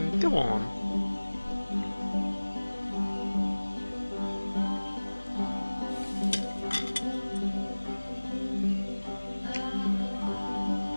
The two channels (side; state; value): both; inverted; correlation -1.00